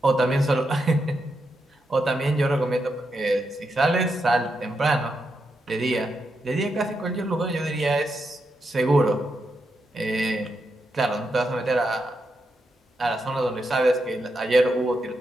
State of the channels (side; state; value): both; normal; correlation 0.84